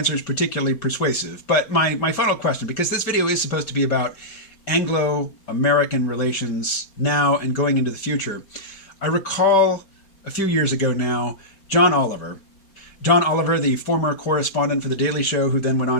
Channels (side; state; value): right; late; 5.1 ms